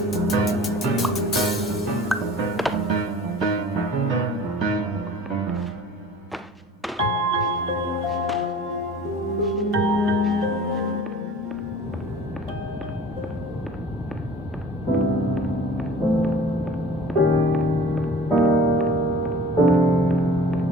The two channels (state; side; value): normal; both; correlation 0.44